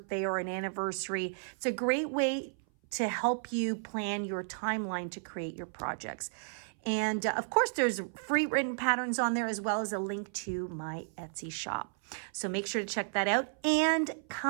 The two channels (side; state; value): left; silent; 56 dB below the other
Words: or an anniversary, it's a great way to help you plan your timeline to create your projects. And of course, there's free written patterns on there as well as a link to my Etsy shop. So make sure to check that out and